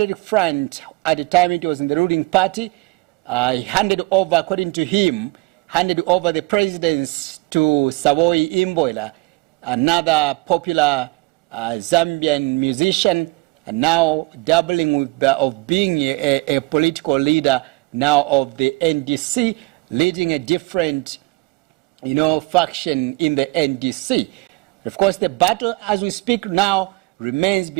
Front, at the time it was in the ruling party, he handed over, according to him, the presidents to Savoy Imboila, another popular Zambian musician, and now doubling with of being a political leader now of the NDC, leading a different, faction in the NDC. Of course, the battle as we speak now remains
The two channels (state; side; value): quieter; left; 24.8 dB